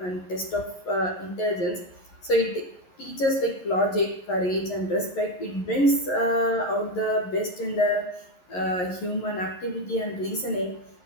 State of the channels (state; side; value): late; right; 11 ms